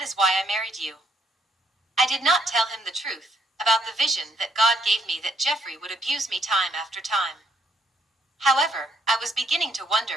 is why I married you." I did not tell him the truth about the vision that God gave me that Jeffrey would abuse me time after time. However, I was beginning to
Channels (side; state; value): both; normal; correlation 0.71